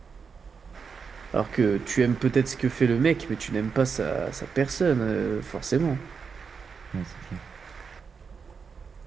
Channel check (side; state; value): left; quieter; 5.7 dB